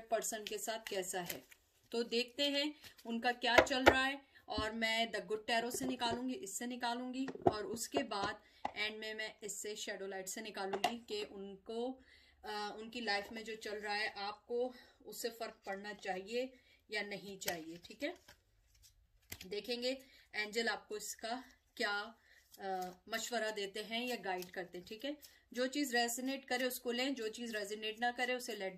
पर्सन के साथ कैसा है। तो देखते हैं उनका क्या चल रहा है। और मैं द गुड टैरो से निकालूंगी, इससे निकालूंगी, और उसके बाद एंड में मैं इससे शैडो लाइट से निकालूंगी कि उनको उनकी लाइफ में जो चल रहा है आपको उससे फर्क पड़ना चाहिए या नहीं चाहिए। ठीक है, देखेंगे एंजल आपको इसका क्या मशवरा देते हैं या गाइड करते हैं। ठीक है, जो चीज रेजोनेट करे उसको लें, जो चीज रेजोनेट ना करे उसे लेट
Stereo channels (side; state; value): both; identical; correlation 1.00